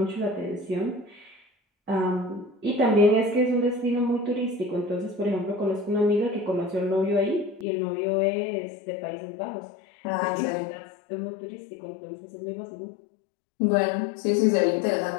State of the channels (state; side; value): drops out; right; at 7.7 s